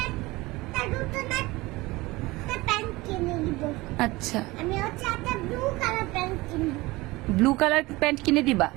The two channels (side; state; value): left; quieter; 21.1 dB